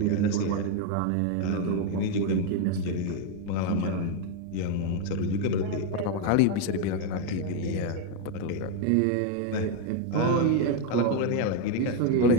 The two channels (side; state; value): both; different; correlation 0.01